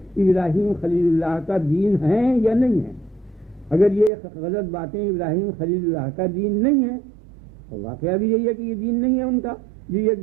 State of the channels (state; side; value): drops out; left; at 4.1 s